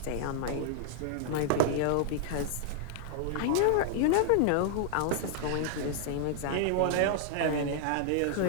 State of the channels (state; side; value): different; both; correlation -0.01